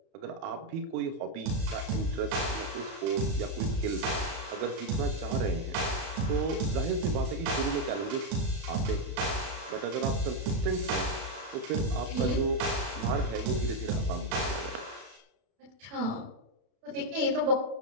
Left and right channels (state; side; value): late; left; 31 ms